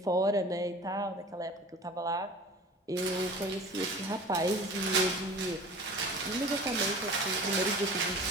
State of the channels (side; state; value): both; normal; correlation 0.40